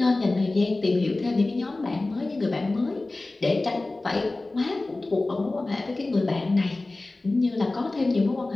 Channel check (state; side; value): quieter; right; 3.1 dB